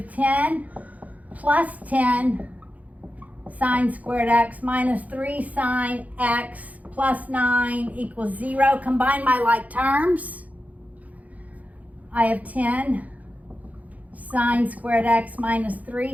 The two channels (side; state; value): left; late; 0.074 ms